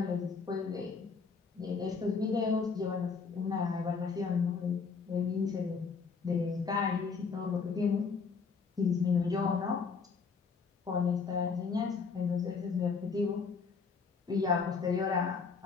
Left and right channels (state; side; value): quieter; right; 5.2 dB